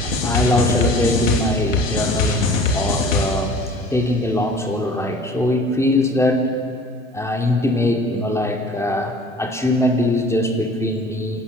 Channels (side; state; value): both; normal; correlation 0.46